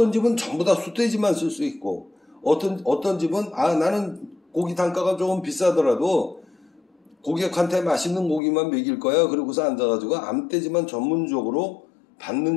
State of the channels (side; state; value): right; drops out; at 8.4 s